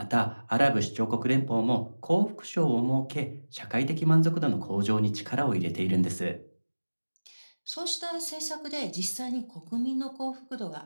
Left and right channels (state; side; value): inverted; both; correlation -1.00